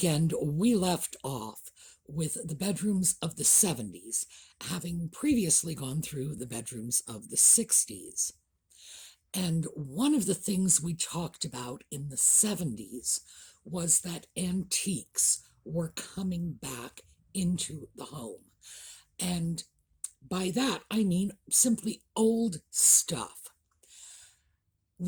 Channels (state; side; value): identical; both; correlation 1.00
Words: we left off with the bedrooms of the 70s, having previously gone through the bedrooms of the 60s. And one of the things we talked about in the 70s was that antiques were coming back into the home. And by that, I mean simply old stuff.